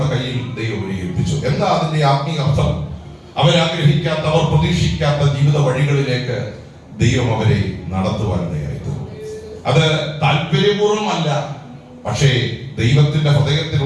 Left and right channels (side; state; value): both; identical; correlation 1.00